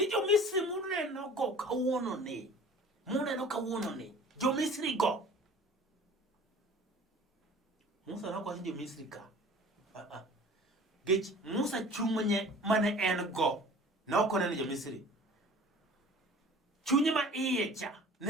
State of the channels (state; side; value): normal; both; correlation 0.45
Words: jo-Misri muneno go kawuono ni. Muneno kawuono ni. Jo-Misri go. Musa nokwacho jo-Misri ka. Gech Musa chunye mane en go. Ne ok oneno jo-Misri. Chunye ma iye cha.